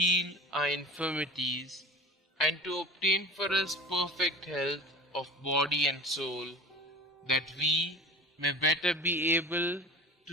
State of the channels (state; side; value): normal; both; correlation 0.35